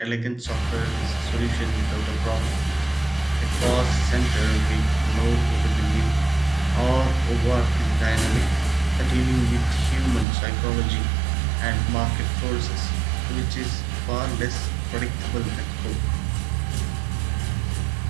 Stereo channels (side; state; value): left; drops out; at 10.2 s